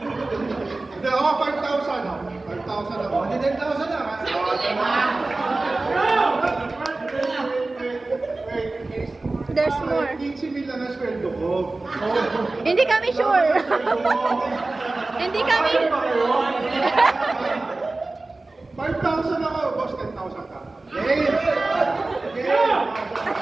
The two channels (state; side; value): quieter; left; 3.2 dB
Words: Hindi ako, 5,000. 5,000 ako. Hindi 10,000 na. There's more. 15 mil lang ang sweldo ko. Hindi kami sure. Hindi kami. 5,000 ako, boss, 10,000 ka. Game! Game!